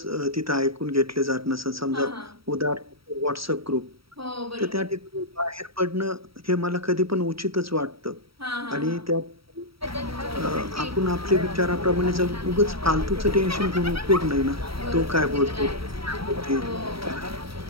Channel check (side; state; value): left; late; 0.75 ms